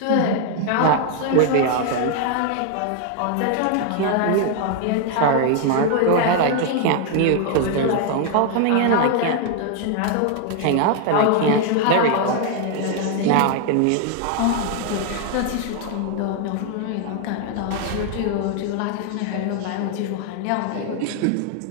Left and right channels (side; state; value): both; different; correlation 0.00